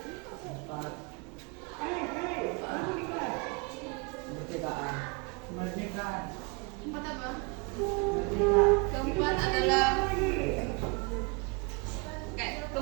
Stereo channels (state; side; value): quieter; left; 30.7 dB